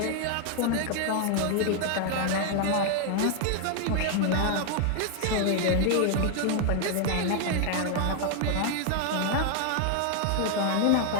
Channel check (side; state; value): both; different; correlation 0.00